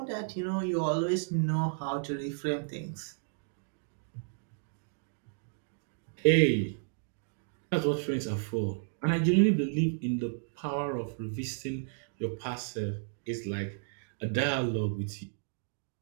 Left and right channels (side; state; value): left; silent; digital silence